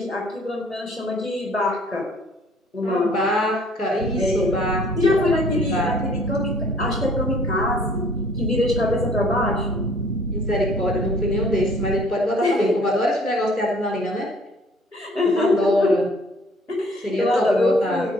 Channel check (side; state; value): both; normal; correlation 0.55